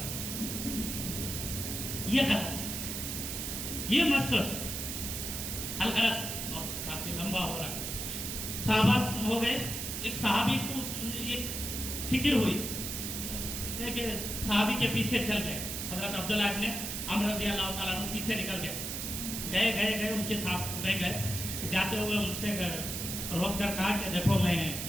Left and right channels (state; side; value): noise; right; hiss, 4 dB below the sound